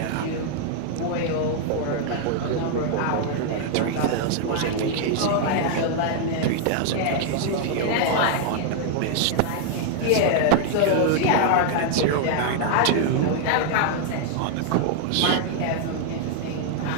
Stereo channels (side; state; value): both; different; correlation 0.00